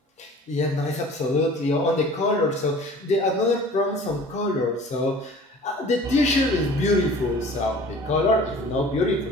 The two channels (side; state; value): both; normal; correlation 0.46